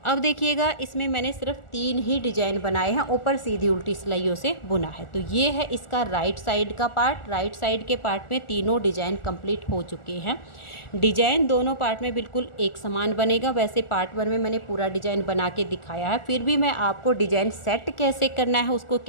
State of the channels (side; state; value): right; late; 1.4 ms